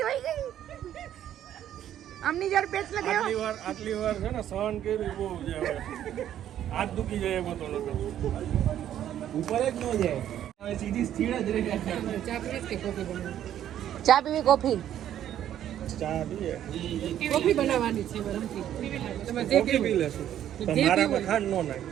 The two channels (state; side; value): quieter; left; 11.0 dB